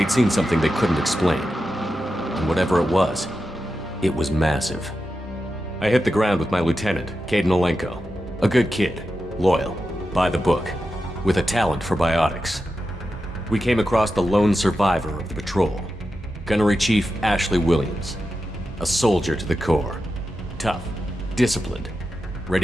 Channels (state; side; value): normal; both; correlation 0.90